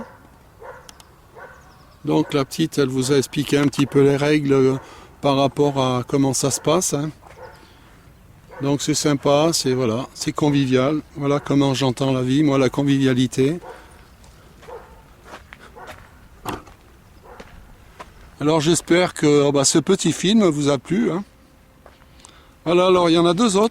Donc la petite, elle vous a expliqué un petit peu les règles par rapport à comment ça se passe. Hein. Donc c'est sympa, c'est convivial. Voilà comment j'entends la vie, moi, la convivialité. Alors j'espère que ce petit film vous a plu. Hein. Voilà, alors il y en a deux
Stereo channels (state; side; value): identical; both; correlation 1.00